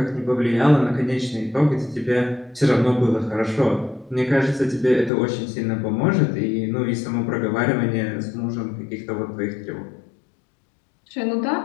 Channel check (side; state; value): right; drops out; at 5.1 s